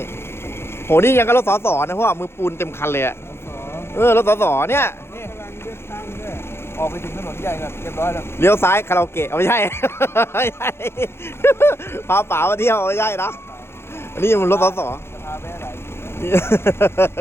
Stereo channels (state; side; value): late; right; 0.12 ms